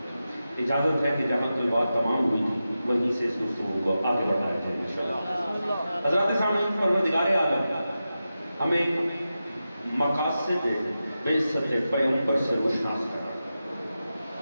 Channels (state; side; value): inverted; both; correlation -0.92